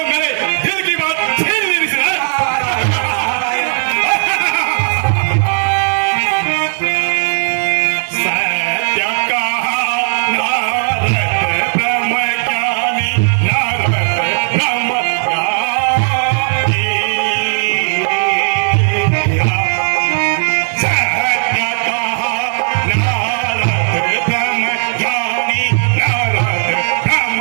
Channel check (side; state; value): left; silent; digital silence